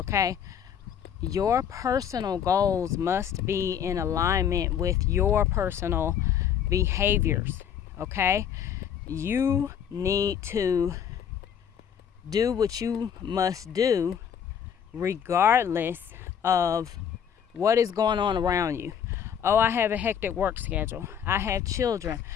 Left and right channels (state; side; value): quieter; right; 8.5 dB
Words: Your personal goals must be in alignment with your personal behaviors, okay? You need to do what you must do regardless of what is going on around you. Oh, I have a hectic work schedule. I have children.